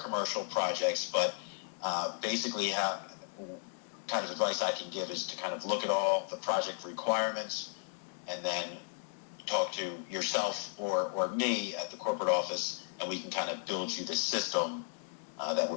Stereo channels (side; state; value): right; silent; 55 dB below the other